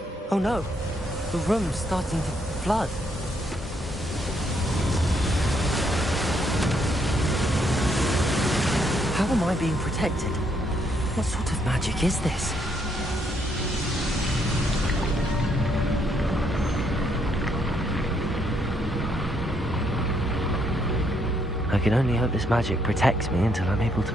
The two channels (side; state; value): both; normal; correlation 0.73